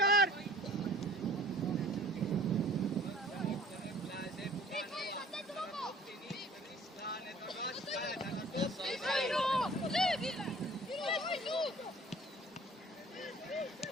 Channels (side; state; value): both; normal; correlation 0.50